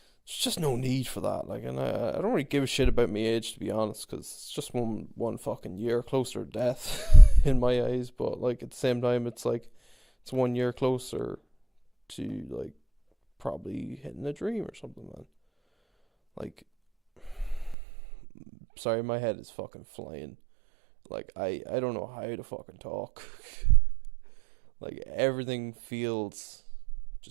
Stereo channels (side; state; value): left; drops out; at 17.8 s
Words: there's just no need for that. Like, and I don't really give a shit about my age to be honest, because it's just one fucking year closer to death in my eyes. But like at the same time, it's like it's 1 year closer to like probably hitting a dream or something, man. Like, sorry, my head is fucking flying. Like I don't know how to fucking talk. Like everything feels